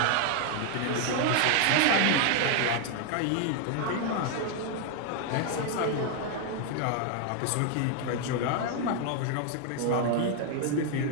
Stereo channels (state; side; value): different; both; correlation 0.01